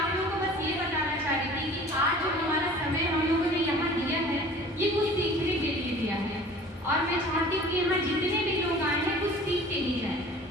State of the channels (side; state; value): both; normal; correlation 0.45